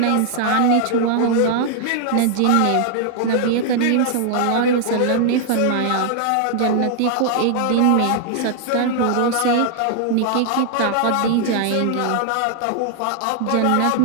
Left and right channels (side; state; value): both; different; correlation 0.00